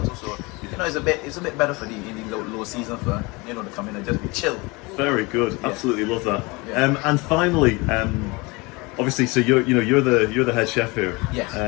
too. So it's a bit better for the low season for to come in and just be chill. Very good. Absolutely love that. And finally, obviously, so you're the head chef here. Yes.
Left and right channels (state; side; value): quieter; right; 25.7 dB